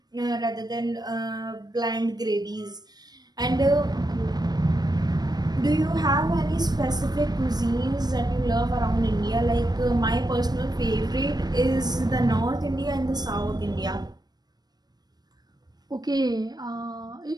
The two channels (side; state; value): left; late; 0.19 ms